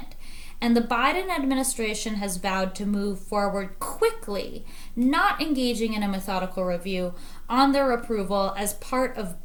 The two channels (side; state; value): both; identical; correlation 1.00